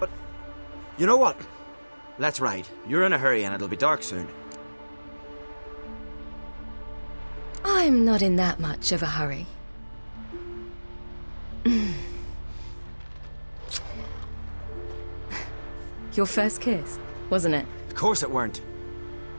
You know what? Let's ride. You're in a hurry and it'll be dark soon. I'm not in that much of a hurry. Your first kiss, wasn't it? Of course it weren't.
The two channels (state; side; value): inverted; both; correlation -1.00